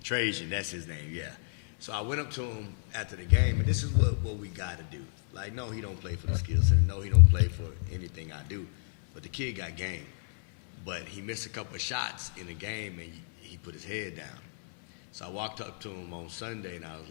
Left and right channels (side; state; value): right; silent; 57 dB below the other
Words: Trajan, that's his name. Yeah. So I went up to him after the game, and this is what we got to do. Like, no, he don't play for the skill center. No, he don't play for anything I do. But the kid got game. But he missed a couple of shots in the game, and he put his head down. So I walked up to him on Sunday, and I was